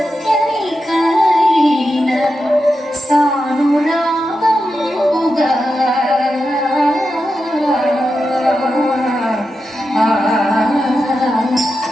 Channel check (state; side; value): normal; both; correlation 0.89